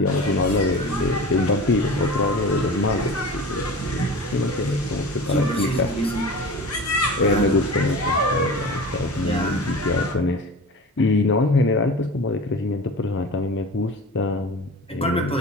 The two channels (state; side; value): normal; both; correlation 0.34